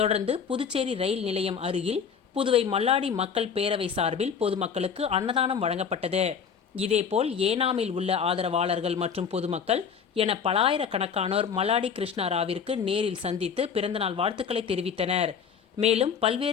புதுச்சேரி ரயில் நிலையம் அருகில் புதுவை மல்லாடி மக்கள் பேரவை சார்பில் பொதுமக்களுக்கு அன்னதானம் வழங்கப்பட்டது. இதேபோல் ஏனாமில் உள்ள ஆதரவாளர்கள் மற்றும் பொதுமக்கள் என பலாயிரக்கணக்கானோர் மல்லாடி கிருஷ்ணராவிற்கு நேரில் சந்தித்து பிறந்தநாள் வாழ்த்துக்களை தெரிவித்தனர். மேலும்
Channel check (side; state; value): right; quieter; 6.7 dB